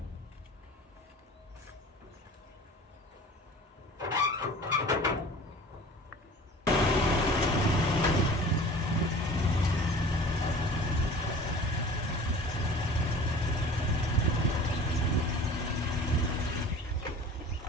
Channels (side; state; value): both; normal; correlation 0.43